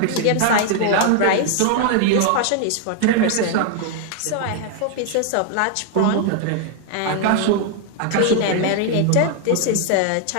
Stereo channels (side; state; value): both; different; correlation 0.00